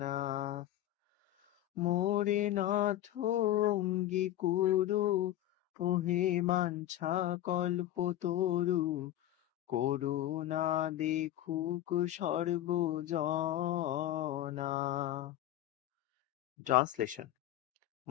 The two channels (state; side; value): quieter; right; 13.6 dB